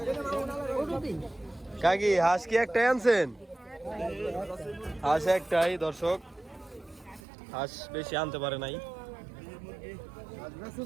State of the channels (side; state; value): left; drops out; at 7.2 s